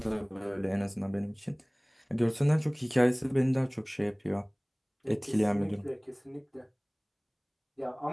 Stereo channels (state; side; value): identical; both; correlation 1.00